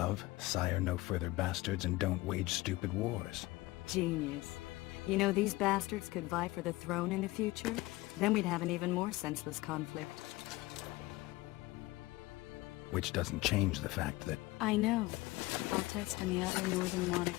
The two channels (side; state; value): right; quieter; 20.2 dB